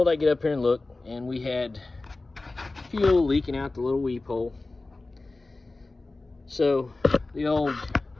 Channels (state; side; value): quieter; right; 3.2 dB